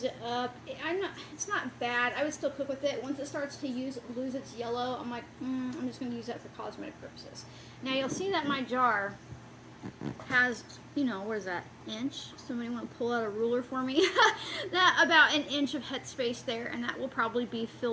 it up. It's not bad. I would still cook with it. Once it starts to lose its yellow, I'm like, I'm just going to use that for cosmetic purposes. Now you'll see that my jar has, you know, what is that, inch? Somebody want to pull out a ruler for me? That about an inch of headspace there, and that will probably be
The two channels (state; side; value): identical; both; correlation 1.00